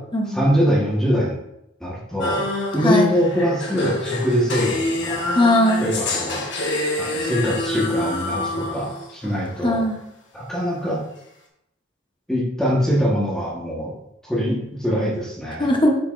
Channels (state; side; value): normal; both; correlation 0.61